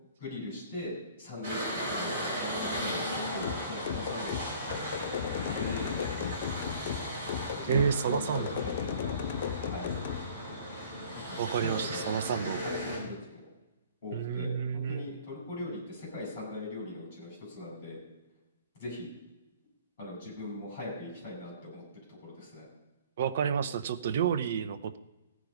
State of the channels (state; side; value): inverted; both; correlation -0.50